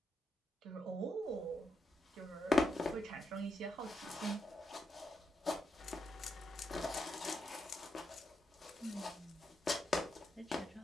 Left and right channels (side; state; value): both; normal; correlation 0.83